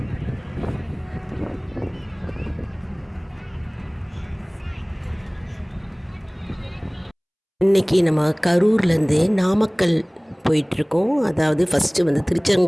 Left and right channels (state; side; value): identical; both; correlation 1.00